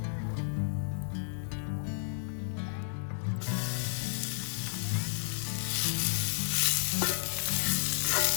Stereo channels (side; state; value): right; silent; 56 dB below the other